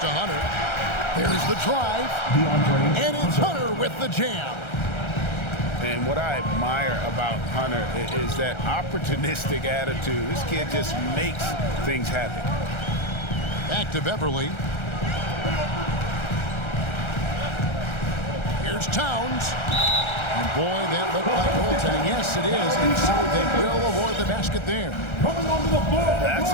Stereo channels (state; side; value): late; right; 1.3 ms